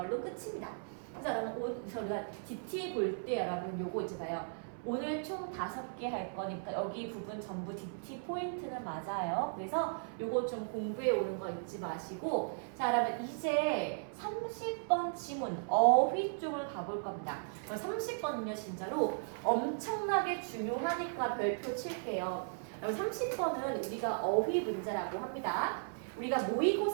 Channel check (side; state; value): left; silent; 53 dB below the other